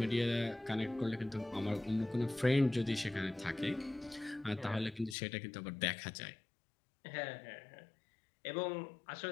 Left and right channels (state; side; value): drops out; right; at 5.2 s